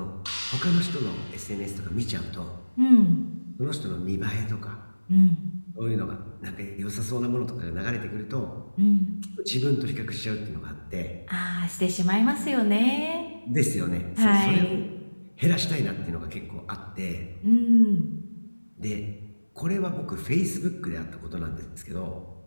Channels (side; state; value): both; inverted; correlation -1.00